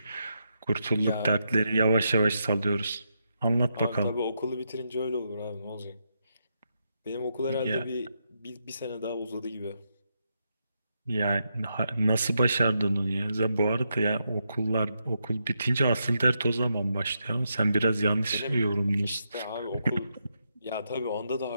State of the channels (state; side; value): inverted; both; correlation -0.82